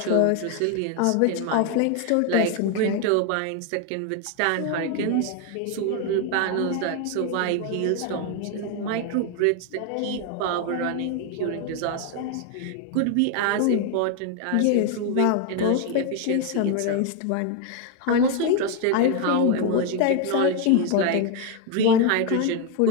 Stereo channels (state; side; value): different; both; correlation 0.01